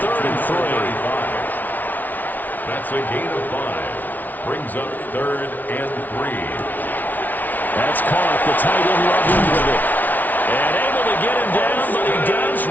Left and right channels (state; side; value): late; right; 0.081 ms